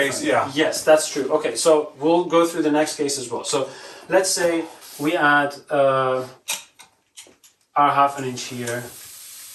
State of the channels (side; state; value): both; identical; correlation 1.00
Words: different. yeah. Yes, that's true. Okay, so we'll go through the next case as well. So let's say we add our 1/2 inch here,